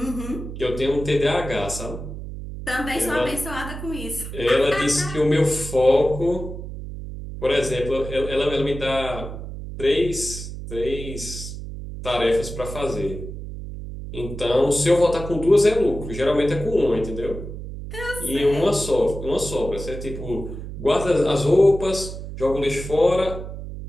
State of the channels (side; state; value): right; noise; hum, 9 dB below the sound